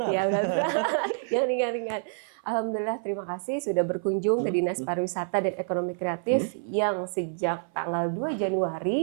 Ya, yang ringan-ringan. Alhamdulillah, terima kasih sudah berkunjung ke Dinas Pariwisata dan Ekonomi Kreatif yang sejak tanggal 2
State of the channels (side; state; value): left; silent; 56 dB below the other